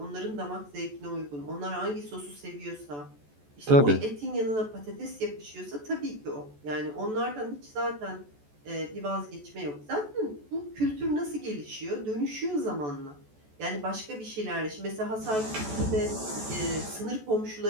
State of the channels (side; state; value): left; late; 14 ms